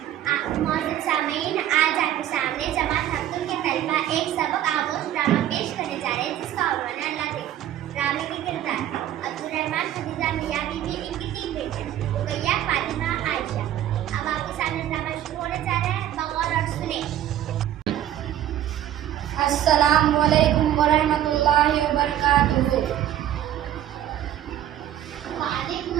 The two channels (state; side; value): quieter; left; 11.8 dB